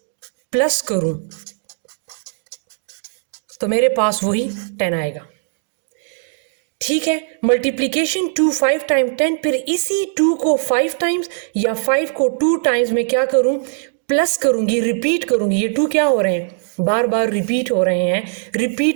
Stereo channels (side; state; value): left; silent; digital silence